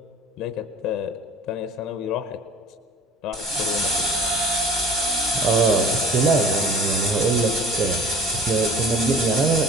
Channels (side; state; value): both; normal; correlation 0.46